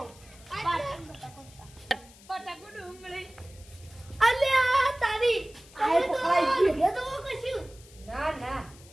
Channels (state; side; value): noise; left; hiss, 23 dB below the sound